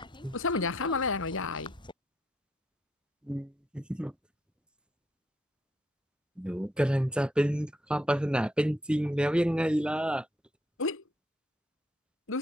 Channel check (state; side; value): normal; both; correlation 0.74